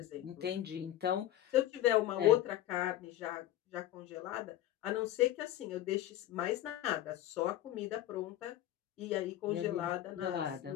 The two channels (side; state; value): right; quieter; 13.2 dB